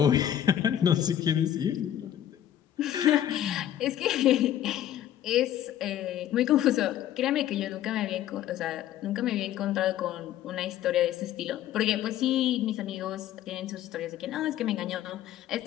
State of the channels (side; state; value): right; quieter; 11.4 dB